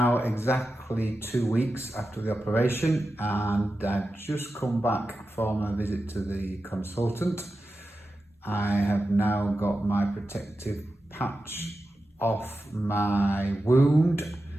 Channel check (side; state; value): both; normal; correlation 0.92